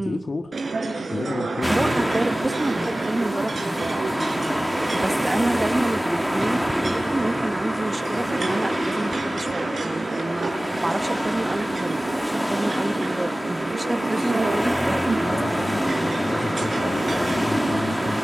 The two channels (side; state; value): both; normal; correlation 0.97